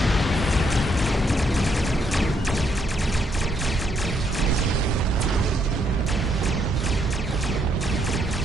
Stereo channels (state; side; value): normal; both; correlation 0.74